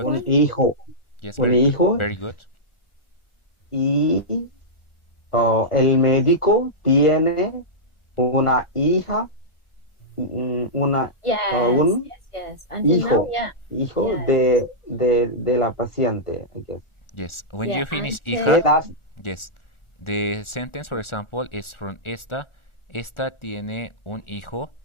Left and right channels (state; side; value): late; right; 1.4 ms